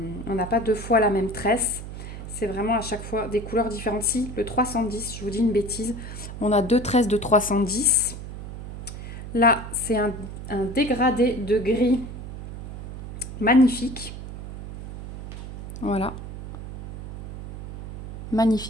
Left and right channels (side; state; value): right; noise; hum, 9 dB below the sound